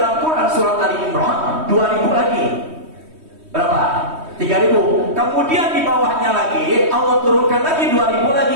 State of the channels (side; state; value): left; late; 3.2 ms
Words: Quran surat Ali Imran 2000 lagi. Berapa? 3000. Kemudian di bawahnya lagi Allah turunkan lagi 2000